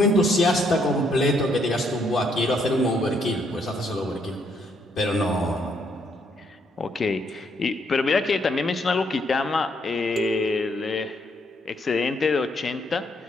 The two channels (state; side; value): normal; both; correlation 0.72